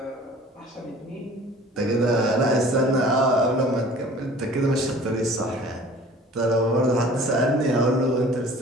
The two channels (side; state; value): both; normal; correlation 0.47